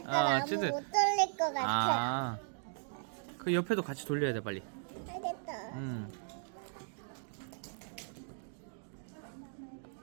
아무 찐득. 못 돌릴 것 같아. 아. 그 옆에도 같이 돌려야 돼 빨리. 알겠다.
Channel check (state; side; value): silent; left; digital silence